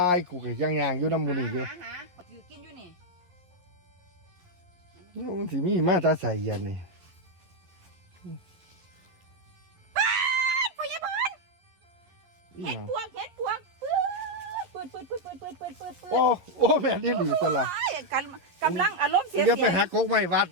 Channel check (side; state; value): left; late; 11 ms